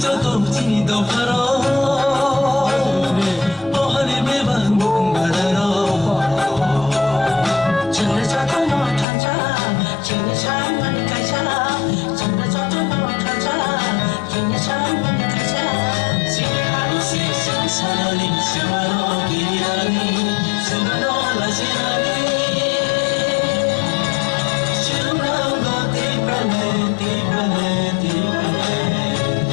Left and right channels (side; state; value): right; drops out; at 9.1 s